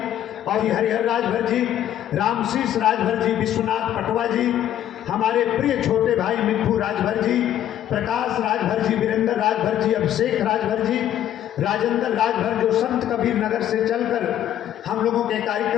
और हरिहर राजभर जी, रामशीष राजभर जी, विश्वनाथ पटवा जी, हमारे प्रिय छोटे भाई मिट्ठू राजभर जी, प्रकाश राजभर जी, वीरेंद्र राजभर जी, अभिषेक राजभर जी, राजेंद्र राजभर जो संत कबीर नगर से चलकर हम लोगों के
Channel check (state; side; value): quieter; right; 11.4 dB